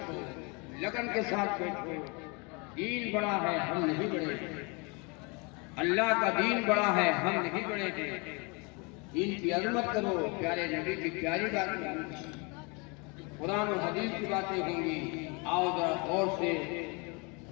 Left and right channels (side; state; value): right; quieter; 30.6 dB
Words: लगन के साथ बैठो. दीन बड़ा है, हम नहीं बड़े. अल्लाह का दीन बड़ा है, हम नहीं बड़े थे. दीन की अज़मत करो, प्यारे नबी की प्यारी बातें होंगी, कुरान और हदीस की बातें होंगी. आओ जरा गौर से